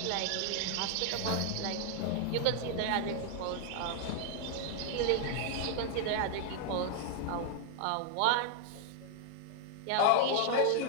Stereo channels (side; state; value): both; different; correlation -0.01